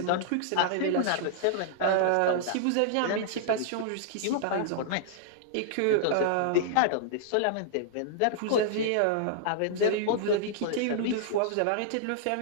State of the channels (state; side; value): different; both; correlation -0.01